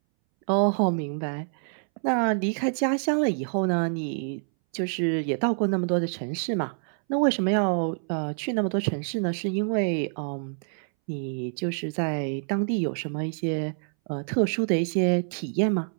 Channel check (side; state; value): left; silent; 60 dB below the other